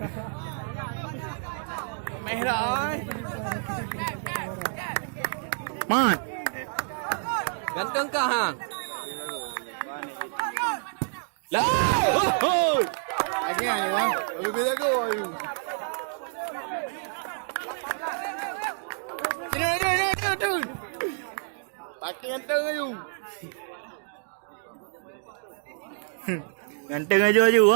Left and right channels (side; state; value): left; silent; digital silence